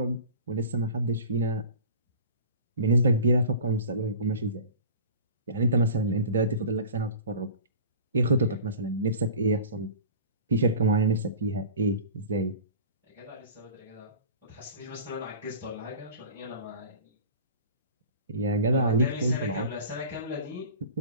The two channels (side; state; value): both; inverted; correlation -0.39